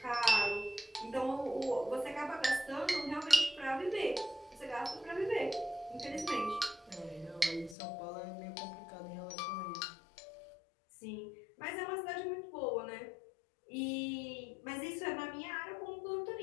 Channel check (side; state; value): right; drops out; at 7.8 s